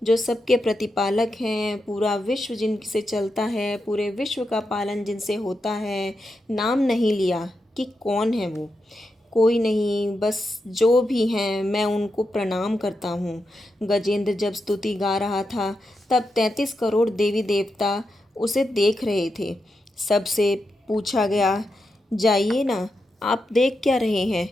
जो सबके प्रतिपालक हैं, पूरा विश्व जिनसे चलता है, पूरे विश्व का पालन जिनसे होता है। नाम नहीं लिया कि कौन है वो, कोई नहीं, बस जो भी हैं मैं उनको प्रणाम करता हूँ। गजेंद्र जब स्तुति गा रहा था तब 33 करोड़ देवी देवता उसे देख रहे थे। सबसे पूछा गया, जाइए ना, आप देख क्या रहे हैं,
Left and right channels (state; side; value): normal; both; correlation 0.87